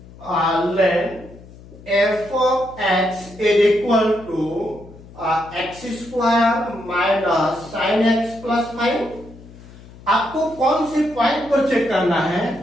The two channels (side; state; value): left; noise; hum, 20 dB below the sound